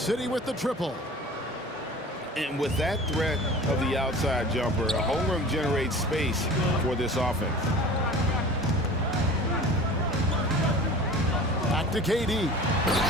with the triple. And with that threat of the outside jumper, Holmgren generates space for this offense. Back to KD.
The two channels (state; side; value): normal; both; correlation 0.40